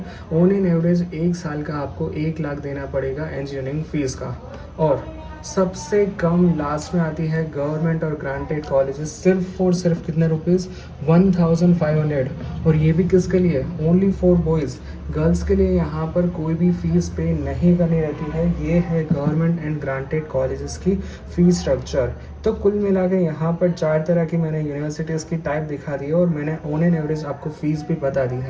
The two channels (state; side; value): identical; both; correlation 1.00